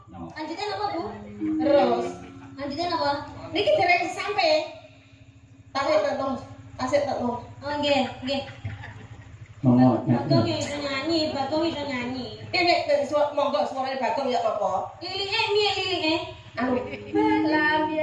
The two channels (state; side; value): identical; both; correlation 1.00